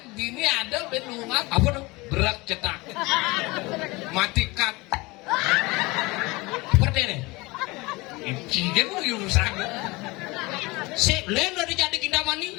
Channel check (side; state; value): right; quieter; 23.5 dB